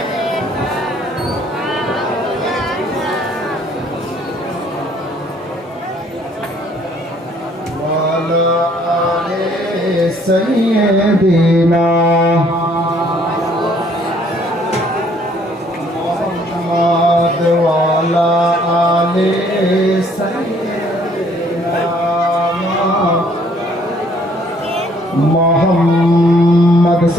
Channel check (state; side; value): normal; both; correlation 0.62